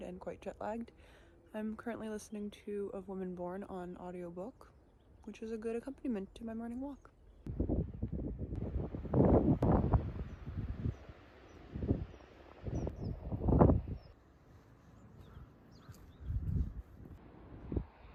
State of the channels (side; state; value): both; identical; correlation 1.00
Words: and quite jet-lagged. I'm currently listening to Of Woman Born on audiobook, which is a good accompaniment to my morning walk.